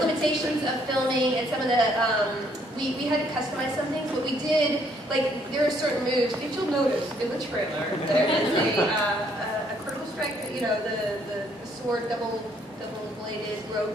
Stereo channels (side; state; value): both; normal; correlation 0.67